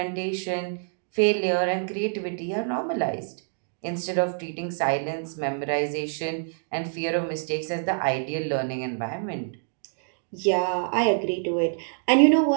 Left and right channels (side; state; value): left; silent; digital silence